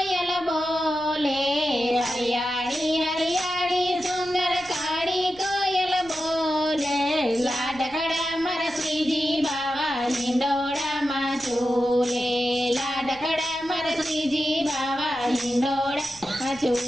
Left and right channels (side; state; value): left; noise; rumble, 23 dB below the sound